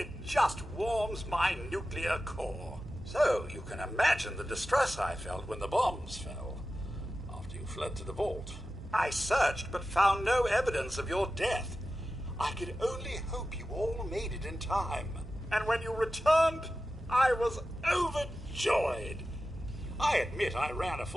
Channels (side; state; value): both; normal; correlation 0.93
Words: just warms my nuclear core. So you can imagine the distress I felt when the bombs fell, after you fled to the vault. I searched, but found no evidence of your death. I could only hope you all made it in time. And when you returned, I was overjoyed. I admit I ran a